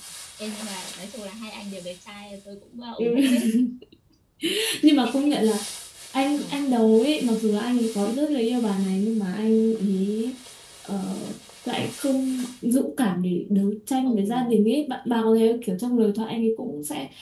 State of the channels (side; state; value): both; identical; correlation 1.00